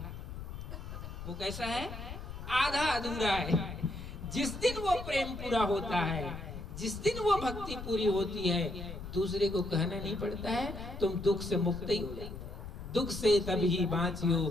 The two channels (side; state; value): left; noise; rumble, 9 dB below the sound